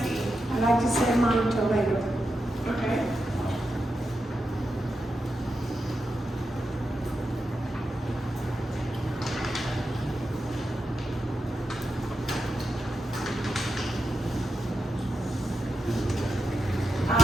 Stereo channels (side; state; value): both; normal; correlation 0.87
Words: I'd like to say mine until later. Okay. I